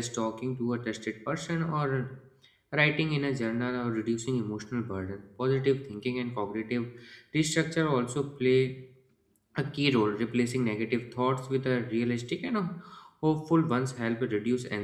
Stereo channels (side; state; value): both; identical; correlation 1.00